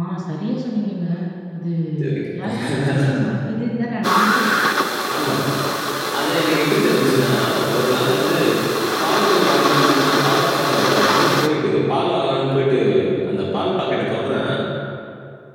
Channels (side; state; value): both; identical; correlation 1.00